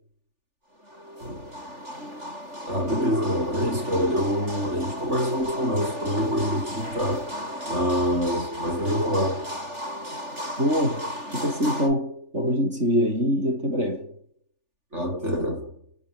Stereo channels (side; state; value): left; late; 3.4 ms